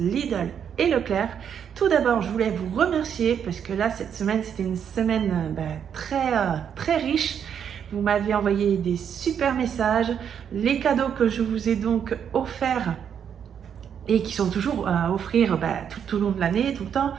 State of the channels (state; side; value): quieter; left; 8.1 dB